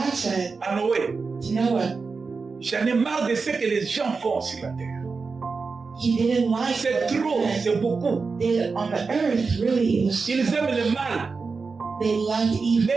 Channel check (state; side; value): quieter; left; 4.6 dB